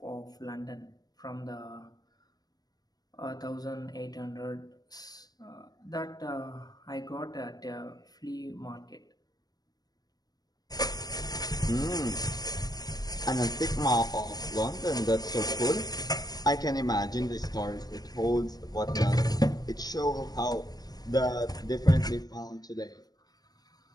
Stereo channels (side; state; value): right; late; 0.19 ms